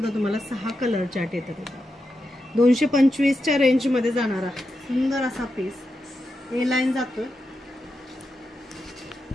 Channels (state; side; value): normal; both; correlation 0.87